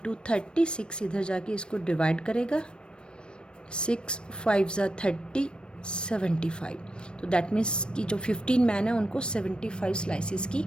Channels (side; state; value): right; late; 0.054 ms